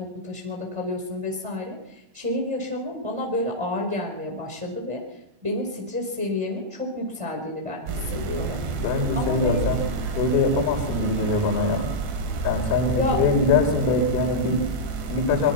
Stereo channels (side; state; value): left; late; 1.5 ms